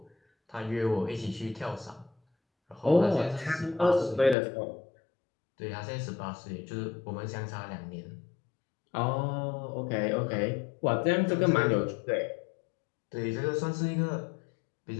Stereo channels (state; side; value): drops out; right; at 4.4 s